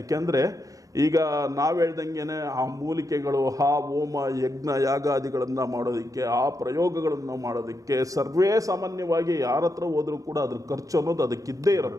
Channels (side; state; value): left; late; 0.17 ms